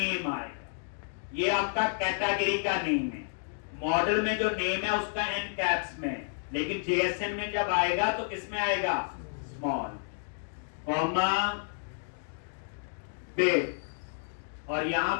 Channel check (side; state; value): right; silent; digital silence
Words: आएगा, ये आपका कैटेगरी का नेम है। मॉडल में जो नेम है उसका एन कैप्स में, लेकिन JSON में जब आएगा तो किसमें आएगा, स्मॉल, कॉमा बिट, और यहां